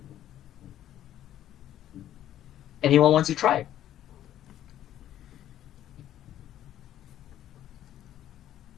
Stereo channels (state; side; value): quieter; right; 11.9 dB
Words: Anyone wants to try?